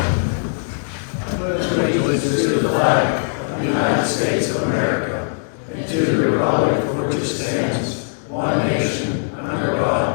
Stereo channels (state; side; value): silent; right; digital silence